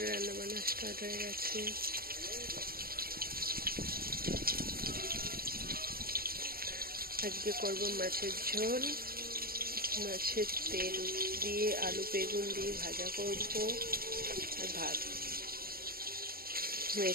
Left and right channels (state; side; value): late; left; 0.43 ms